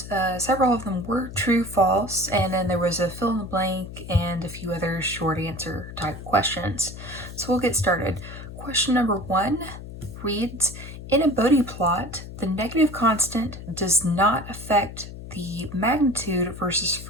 several of them were true, false, and then there was a fill in the blank and a few other short answer type questions. So we'll get started. Question number 1 reads, in a Bode plot, the negative constant does not affect the magnitude versus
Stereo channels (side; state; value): left; noise; hum, 12 dB below the sound